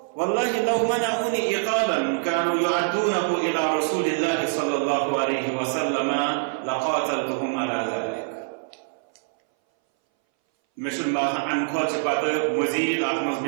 والله لو منعوني إقالا كانوا يعدونه إلى رسول الله صلى الله عليه وسلم لقاتلتهم على ذلك مثل ما عن خود بعد مزید آتمز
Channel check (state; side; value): silent; left; 60 dB below the other